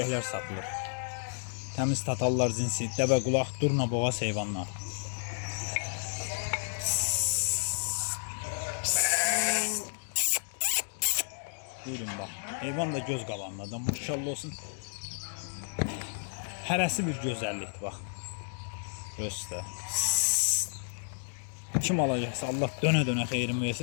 satılır. Təmiz tatallar cinsi, dəvə qulaq, durna boğaz heyvanlar. Buyurun bax, heyvan da göz qabağındadır, maşallah olsun. Hərəsi bir gözəllikdir, bax. Göstər. Kim alacaqsa Allah dönə-dönə xeyrin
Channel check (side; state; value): right; silent; digital silence